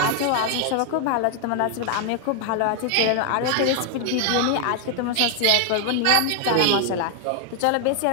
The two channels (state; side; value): different; both; correlation 0.00